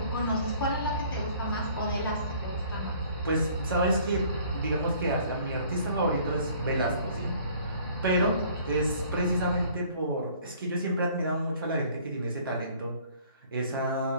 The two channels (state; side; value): inverted; both; correlation -0.55